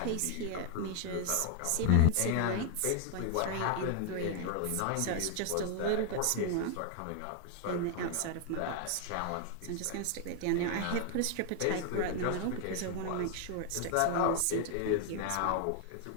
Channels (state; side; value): different; both; correlation 0.00